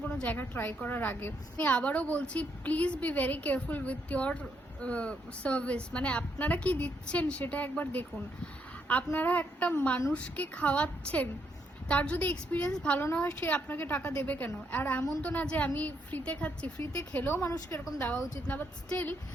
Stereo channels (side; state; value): both; normal; correlation 0.76